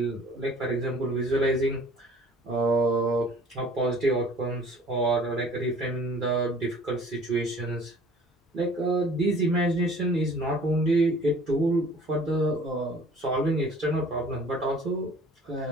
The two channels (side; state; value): both; normal; correlation 0.50